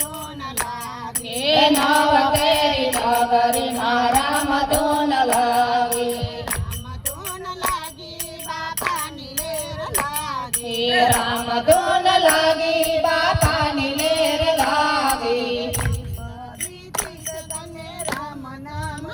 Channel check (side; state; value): both; identical; correlation 1.00